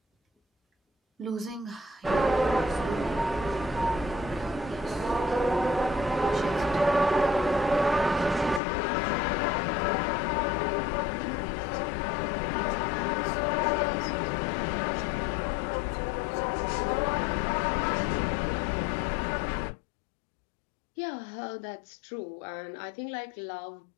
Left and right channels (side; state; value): right; drops out; at 8.6 s